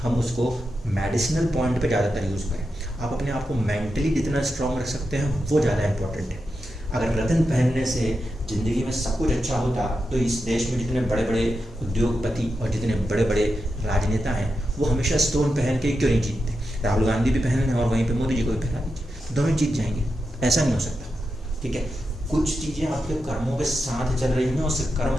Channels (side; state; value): both; normal; correlation 0.88